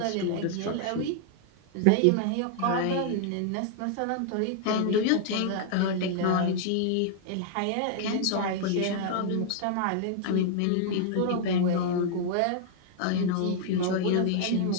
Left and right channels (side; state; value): both; different; correlation -0.01